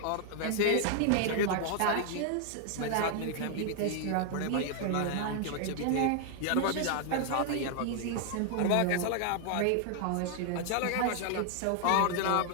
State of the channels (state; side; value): different; both; correlation 0.00